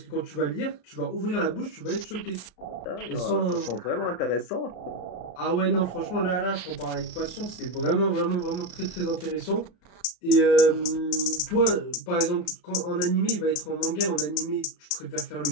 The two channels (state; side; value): late; right; 33 ms